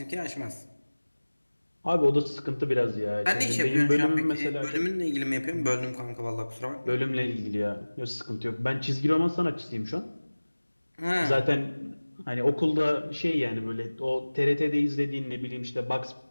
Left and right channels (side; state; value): both; inverted; correlation -1.00